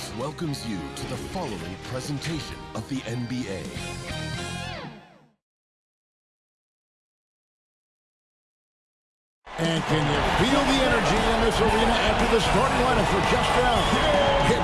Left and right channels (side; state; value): both; identical; correlation 1.00